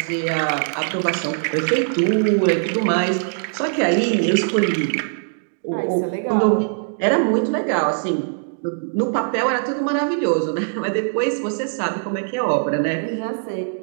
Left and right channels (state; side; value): silent; left; digital silence